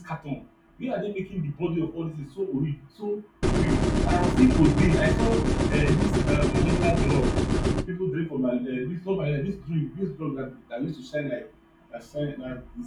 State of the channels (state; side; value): identical; both; correlation 1.00